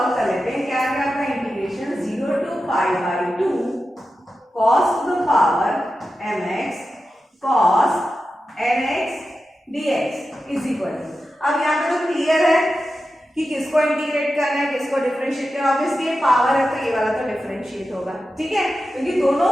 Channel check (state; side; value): normal; both; correlation 0.92